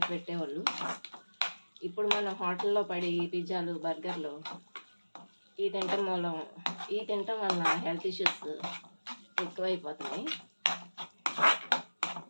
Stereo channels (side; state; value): both; inverted; correlation -1.00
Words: పెట్టేవాళ్ళు. ఇప్పుడు మన హోటల్లో పడి పిజ్జాలు బర్గర్లు ఈ తింటాం వల్ల హెల్త్ ఇష్యూస్ ఎక్కువైపోతున్నాయి.